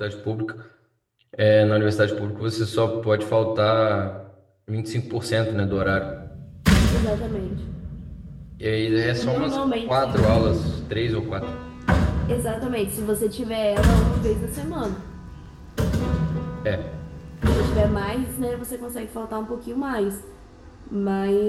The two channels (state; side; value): identical; both; correlation 1.00